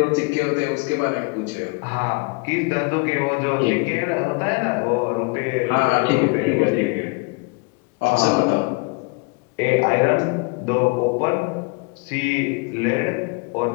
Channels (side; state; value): right; quieter; 29.4 dB